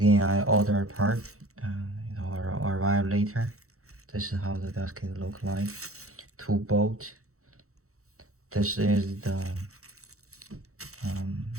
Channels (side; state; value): left; late; 0.64 ms